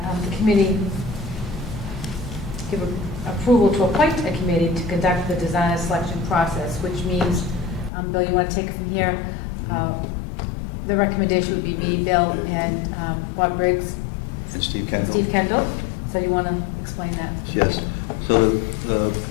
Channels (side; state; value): right; drops out; at 7.9 s